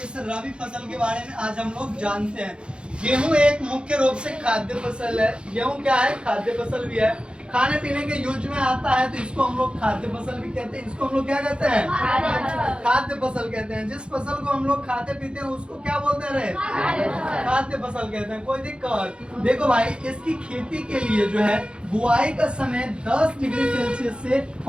रबी फसल के बारे में आज हम लोग जानते हैं। गेहूं एक मुख्य रूप से खाद्य फसल है। गेहूं क्या है? खाद्य फसल भी है, खाने पीने के यूज में आता है, तो इसको हम लोग खाद्य फसल भी कहते हैं। इसको हम लोग क्या कहते हैं? खाद्य फसल कहते हैं। जिस फसल को हम लोग खाते पीते हैं उसको क्या बोलते हैं? खाद्य फसल कहते हैं। कोई दिक्कत? देखो भाई, इसकी खेती के लिए जो है बुआई का समय 10 डिग्री सेल्सियस से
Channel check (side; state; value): left; late; 0.055 ms